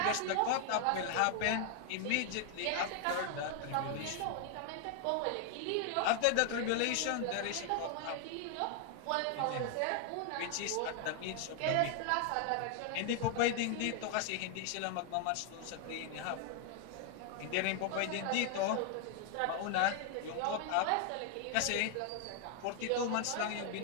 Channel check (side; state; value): both; different; correlation 0.00